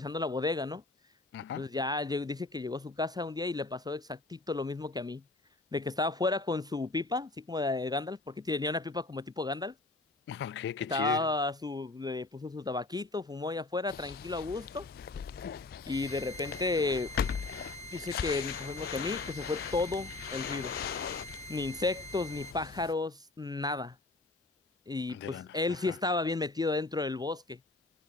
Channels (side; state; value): right; quieter; 3.1 dB